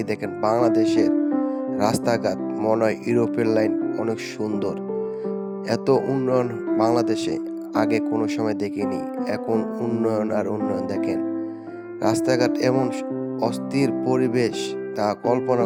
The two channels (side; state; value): both; identical; correlation 1.00